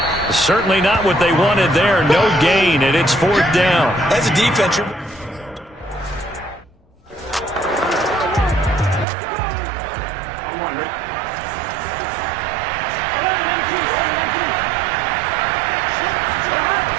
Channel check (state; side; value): drops out; left; at 9.1 s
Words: Certainly not what they wanted there. No gain, and it's 4th down. As a defense,